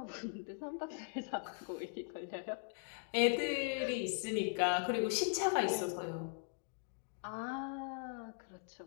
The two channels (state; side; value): silent; right; digital silence